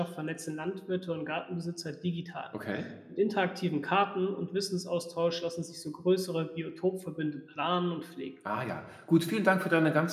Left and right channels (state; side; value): identical; both; correlation 1.00